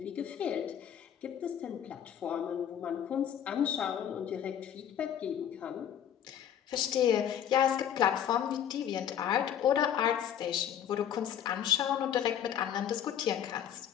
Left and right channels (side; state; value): right; quieter; 9.6 dB